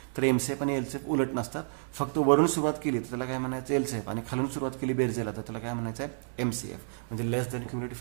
तर एमसीएफ आणि एलसीएफ उलट नसतात. फक्त वरून सुरुवात केली तर त्याला काय म्हणायचं? एलसीएफ. आणि खालून सुरुवात केली बेरजेला तर त्याला काय म्हणायचं आहे? एमसीएफ. म्हणजे लेस दॅन क्युम्युलेटिव्ह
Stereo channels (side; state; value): left; silent; digital silence